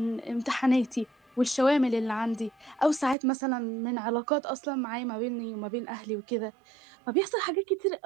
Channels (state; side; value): drops out; left; at 3.2 s